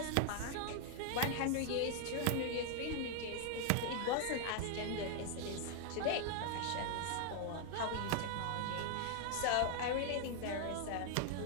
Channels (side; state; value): both; different; correlation 0.00